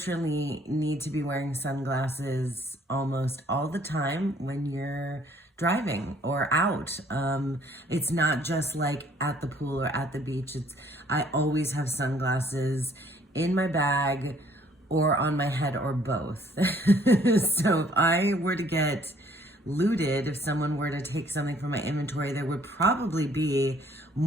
need to be wearing sunglasses almost all the time when you're driving or out. It's not just like at the pool or at the beach. I always have sunglasses in my bag or on my head or both. So if I were to get looted, if someone were to take something from my inventory, there would probably be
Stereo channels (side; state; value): both; normal; correlation 0.61